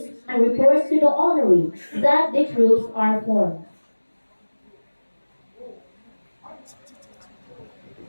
and reports to the honoree that the troops are formed.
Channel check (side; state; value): both; inverted; correlation -1.00